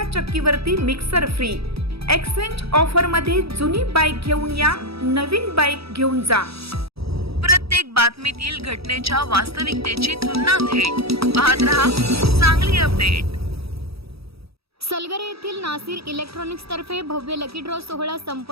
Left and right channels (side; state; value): left; late; 0.77 ms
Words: चक्कीवरती मिक्सर फ्री। एक्सचेंज ऑफर मध्ये जुनी बाईक घेऊन या, नवीन बाईक घेऊन जा। प्रत्येक बातमीतील घटनेच्या वास्तविकतेची तुलना थेट पाहत रहा चांगली अपडेट। सलगरे येथील नासिर इलेक्ट्रॉनिक्स तर्फे भव्य लकी ड्रॉ सोहळा